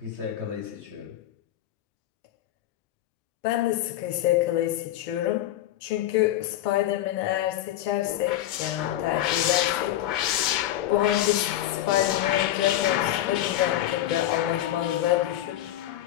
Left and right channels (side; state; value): right; quieter; 13.4 dB